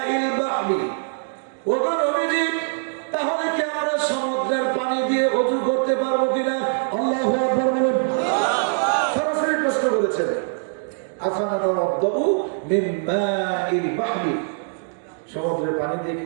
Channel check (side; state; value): left; silent; digital silence